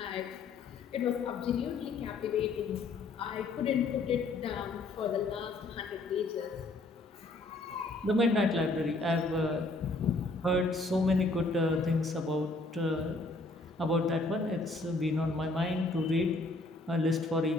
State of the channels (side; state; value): right; quieter; 3.2 dB